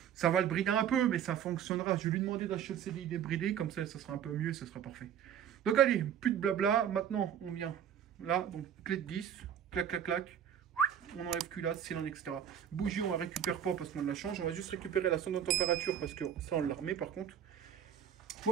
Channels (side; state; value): left; quieter; 9.1 dB